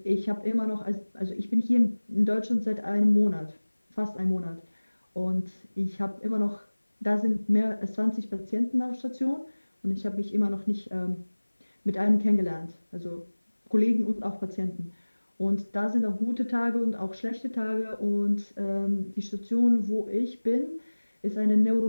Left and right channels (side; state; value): both; inverted; correlation -1.00